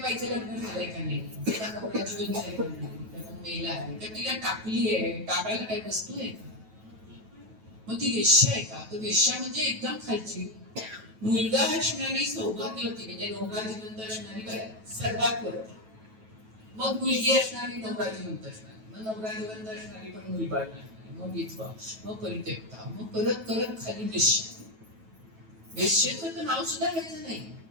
लग्न झालंय का नाही, त्याचा नवरा जीवन झालंय का नाही, त्याचा मेला आहे का, तिला टाकली आहे, टाकायला काही वस्तू आहे का, मग ती वेश्या आहे का. तर वेश्या म्हणजे एकदम खालची, मुलगा असणारी सौभाग्यवती म्हणजे नवरा जिवंत असणारी बाई सर्वात वरती. मग मुलगी असणारी नवरा जिवंत असणारी, मग नवरा जिवंत असणारी पण मुलबाळ नसणारी, मग विधवा, मग परित्यक्ता, मग करत करत खाली वेश्या. वेश्येचं तर नाव सुद्धा घ्यायचं नाही.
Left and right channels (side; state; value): left; late; 9.2 ms